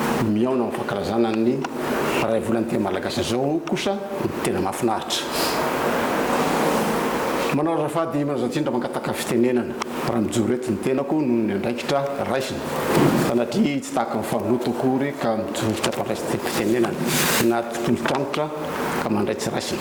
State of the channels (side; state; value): both; identical; correlation 1.00